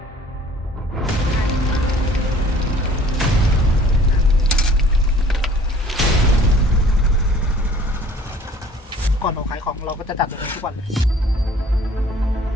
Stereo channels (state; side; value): normal; both; correlation 0.53